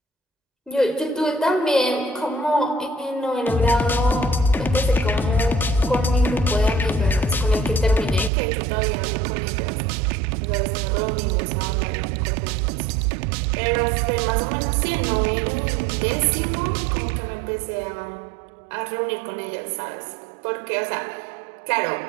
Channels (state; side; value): drops out; left; at 8.3 s